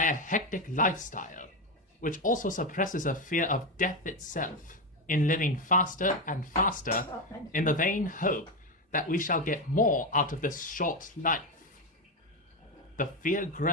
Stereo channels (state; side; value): normal; both; correlation 0.11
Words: a hectic lifestyle, which also suppresses a fear of death itself in living faster and faster in the vain hope that we shall get more out of this short life. The fear